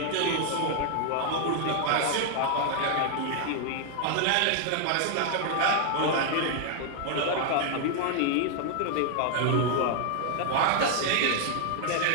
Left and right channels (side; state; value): both; different; correlation 0.00